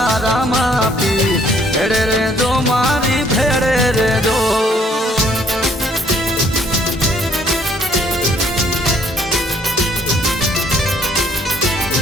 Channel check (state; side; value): normal; both; correlation 0.63